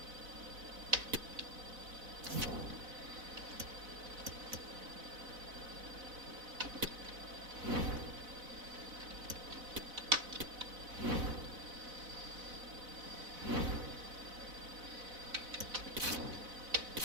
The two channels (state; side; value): late; left; 4.0 ms